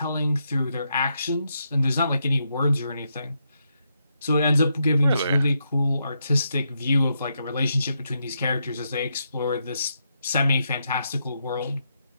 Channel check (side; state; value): both; inverted; correlation -0.81